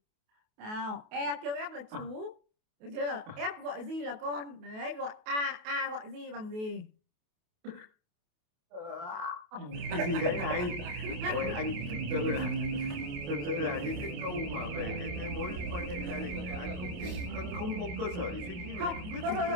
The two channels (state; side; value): late; left; 28 ms